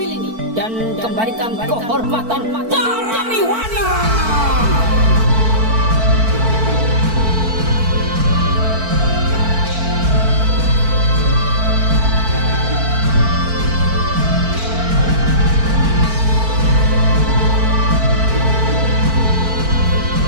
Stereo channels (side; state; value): left; late; 4.5 ms